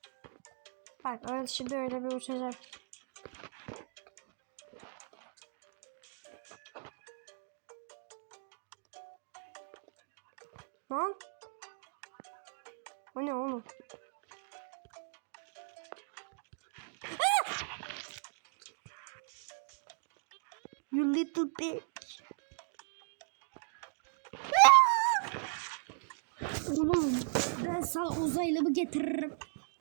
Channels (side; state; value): left; silent; digital silence